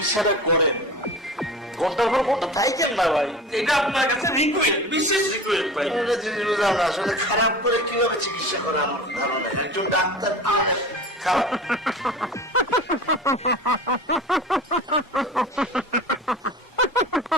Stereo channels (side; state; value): both; normal; correlation 0.35